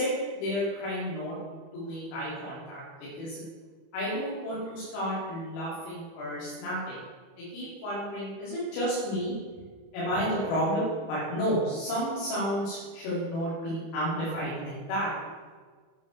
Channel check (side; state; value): right; late; 30 ms